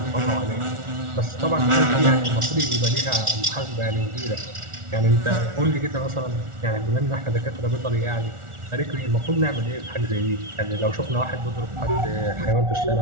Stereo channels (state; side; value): late; left; 1.4 ms